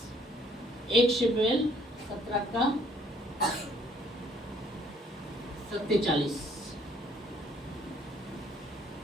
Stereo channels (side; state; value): both; normal; correlation 0.63